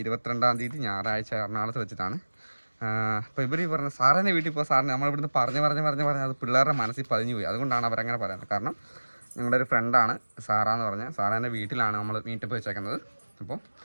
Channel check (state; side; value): inverted; both; correlation -1.00